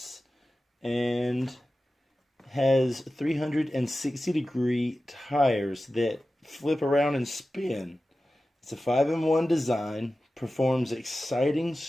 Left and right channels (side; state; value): both; normal; correlation 0.94